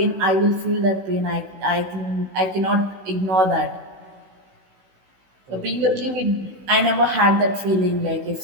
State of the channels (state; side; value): late; left; 16 ms